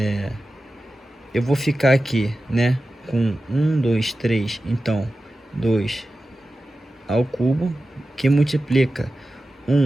Eu vou ficar aqui, né, com 1, 2, 3, então 2 ao cubo, que multiplica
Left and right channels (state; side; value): normal; both; correlation 0.94